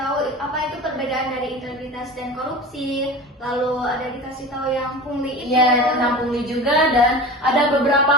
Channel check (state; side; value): normal; both; correlation 0.33